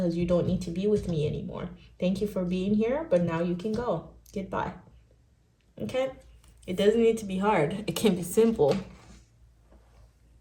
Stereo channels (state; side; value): identical; both; correlation 1.00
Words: you don't need to be with me anymore. Thank you for being here, but now you can go. Goodbye. Okay? It doesn't need to be hard. It can be simple.